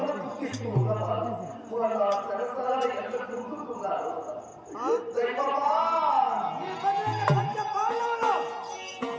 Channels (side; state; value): both; identical; correlation 1.00